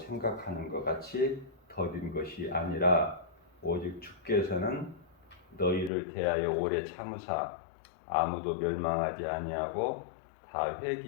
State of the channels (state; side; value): drops out; right; at 5.9 s